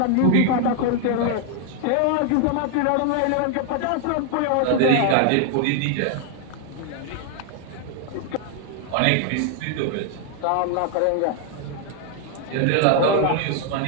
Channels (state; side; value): different; both; correlation 0.00